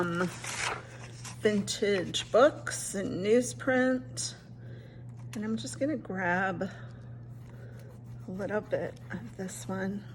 vintage books and newsprint. And I'm just going to grab a little bit of this one.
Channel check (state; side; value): identical; both; correlation 1.00